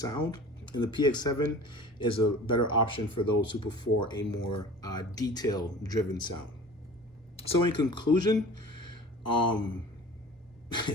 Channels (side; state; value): both; normal; correlation 0.41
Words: And the PX7 is a better option for those who prefer a more detail-driven sound. So in conclusion,